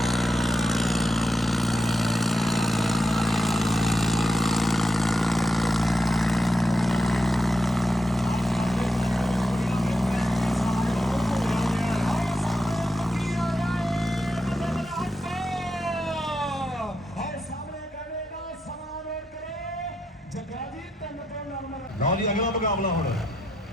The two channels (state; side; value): normal; both; correlation 0.84